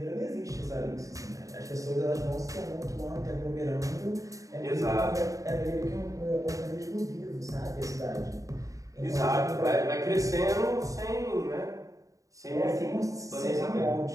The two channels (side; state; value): left; late; 0.16 ms